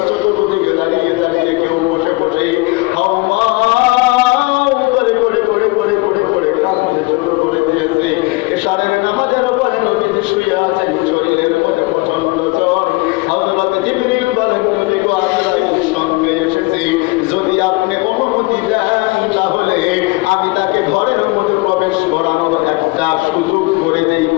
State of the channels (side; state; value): right; quieter; 24.0 dB